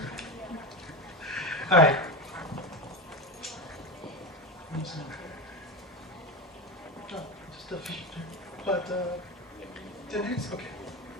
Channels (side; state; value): both; normal; correlation 0.21